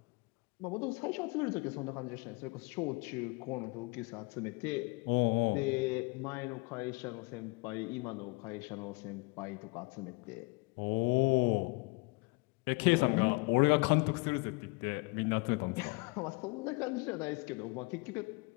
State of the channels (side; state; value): right; quieter; 27.7 dB